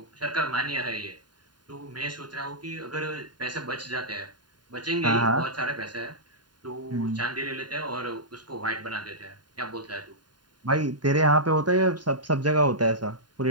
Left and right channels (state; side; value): late; left; 0.70 ms